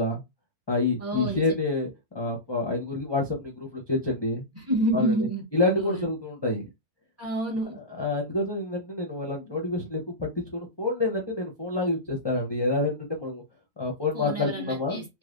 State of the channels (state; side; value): normal; both; correlation -0.17